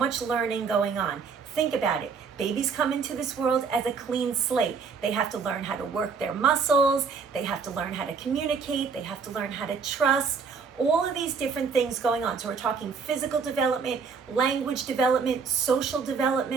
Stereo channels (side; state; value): left; quieter; 5.5 dB